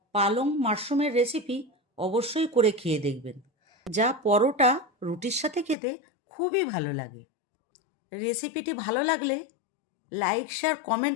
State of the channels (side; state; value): right; drops out; at 5.8 s